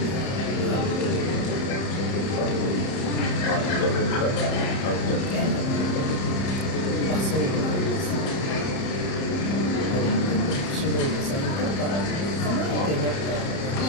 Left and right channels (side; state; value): right; late; 30 ms